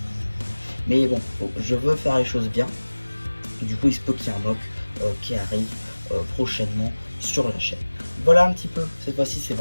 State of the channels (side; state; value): both; inverted; correlation -1.00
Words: Mais bon, je veux faire les choses bien. Et du coup, il se peut qu'il y ait un mock qui arrive prochainement sur la chaîne. Voilà un petit peu, cette fois-ci c'est